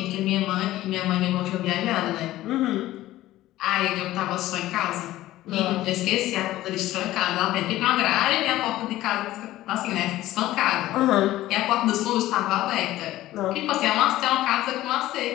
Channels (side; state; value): right; quieter; 15.5 dB